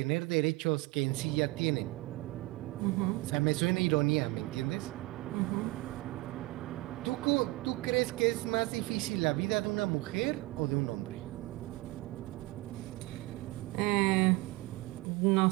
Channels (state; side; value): quieter; left; 21.4 dB